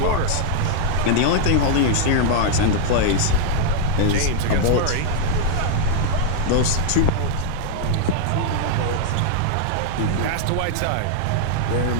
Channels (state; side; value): different; both; correlation -0.01